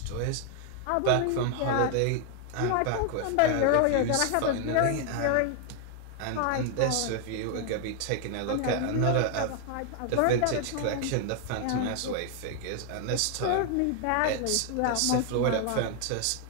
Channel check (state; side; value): different; both; correlation 0.00